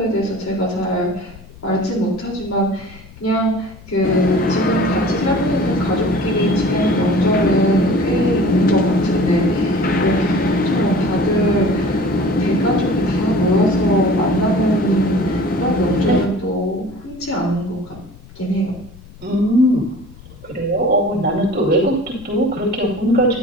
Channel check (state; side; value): noise; left; rumble, 21 dB below the sound